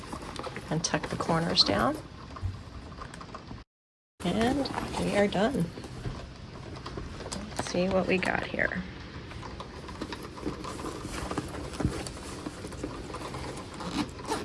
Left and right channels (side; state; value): both; identical; correlation 1.00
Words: and tuck the corners down. And we are done. Let's see what we got here.